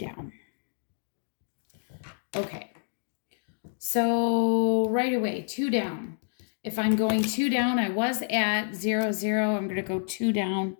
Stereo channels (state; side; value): silent; right; digital silence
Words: Okay. So right away, 2 down. If I'm going 2 down, I was at 0, 0. I'm going to go 2 down.